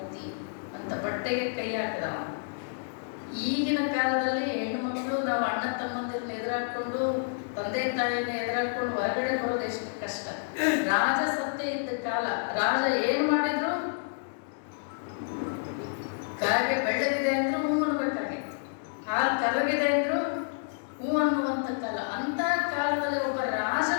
ಅಂತ ಬಟ್ಟೆಗೆ ಕೈ ಹಾಕಿದ. ಈಗಿನ ಕಾಲದಲ್ಲಿ ಹೆಣ್ಣು ಮಕ್ಕಳು ನಾವು ಅಣ್ಣ ತಮ್ಮಂದಿರನ್ನ ಎದುರಾಕೊಂಡು, ತಂದೆ ತಾಯಿಯನ್ನು ಎದುರಾಕೊಂಡು ಹೊರಗಡೆ ಬರೋದು ಎಷ್ಟು ಕಷ್ಟ. ರಾಜ ಸತ್ಯ ಇದ್ದ ಕಾಲ. ರಾಜ ಏನು ಮಾಡಿದ್ರು, ಕಾಗೆ ಬೆಳ್ಳಗಿದೆ ಅಂದ್ರು ಹೂ ಅನ್ಬೇಕಾಗಿತ್ತು, ಹಾಲು ಕರಗಿದೆ ಅಂದ್ರು ಹೂ ಅನ್ನುವಂಥ ಕಾಲ. ಅಂತ ಕಾಲದಲ್ಲಿ ಒಬ್ಬ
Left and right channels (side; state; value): right; silent; digital silence